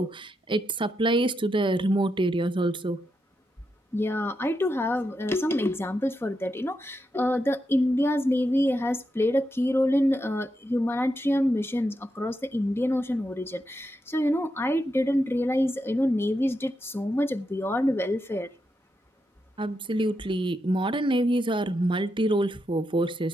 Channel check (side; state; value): both; normal; correlation 0.84